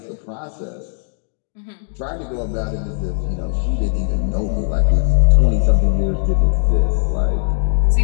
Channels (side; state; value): right; silent; digital silence